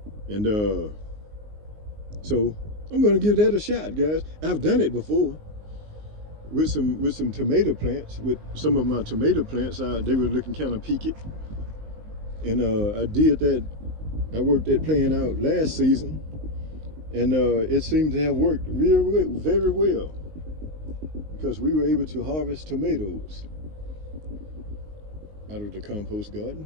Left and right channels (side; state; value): left; late; 19 ms